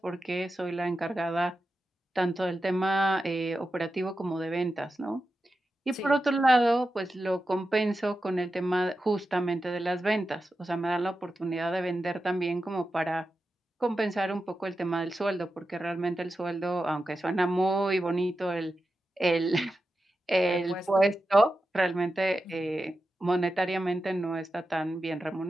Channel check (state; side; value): normal; both; correlation 0.91